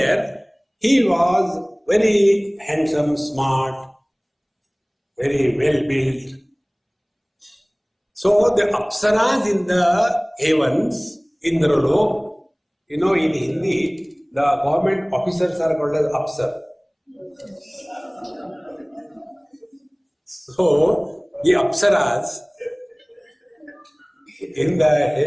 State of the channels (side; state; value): both; identical; correlation 1.00